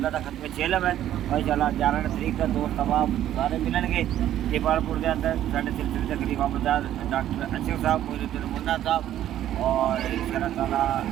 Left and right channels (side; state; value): left; quieter; 11.9 dB